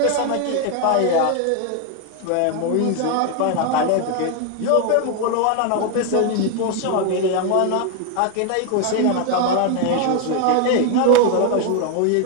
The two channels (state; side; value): different; both; correlation 0.01